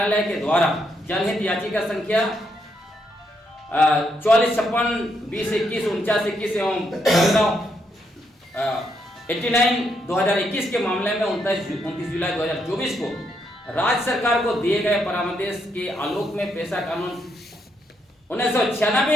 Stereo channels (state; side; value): normal; both; correlation 0.77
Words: के द्वारा जनहित याचिका संख्या 4456-2021-49-21 एवं 89/2021 के मामले में 29 जुलाई 2024 को राज्य सरकार को दिए गए परामर्श के आलोक में पेशा कानून